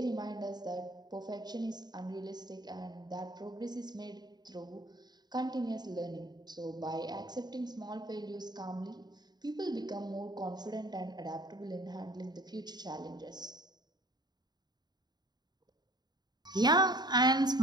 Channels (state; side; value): late; left; 0.20 ms